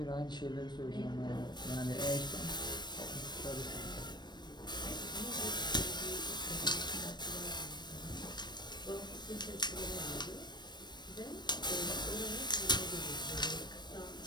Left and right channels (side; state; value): right; late; 0.21 ms